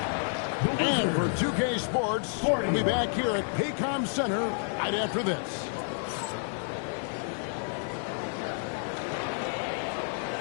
And for 2K Sports, we'll be back here at Paycom Center right after this.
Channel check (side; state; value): right; silent; 58 dB below the other